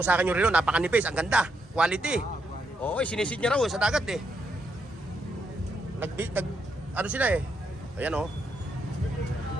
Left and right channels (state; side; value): normal; both; correlation 0.79